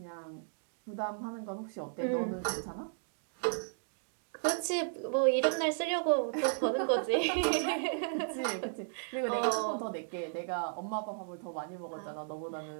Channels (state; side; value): silent; left; digital silence